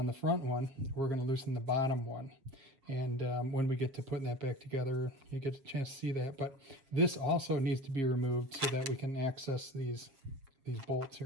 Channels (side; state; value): left; late; 7.2 ms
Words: the front one, we're going to loosen the bottom one. And when we get to putting that back together, you get a chance to see that. But this also needs to be removed so that we can access these bolts